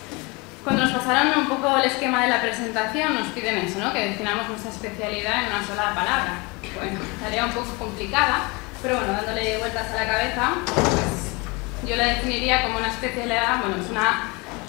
Cuando nos pasaron un poco el esquema de la presentación, nos piden eso, ¿no? Que definamos nuestra especialidad en una sola palabra. Bueno, tarea un poco complicada, pero bueno, dándole vueltas a la cabeza, pues yo la definiría como una especialidad, bueno, es una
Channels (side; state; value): right; quieter; 27.0 dB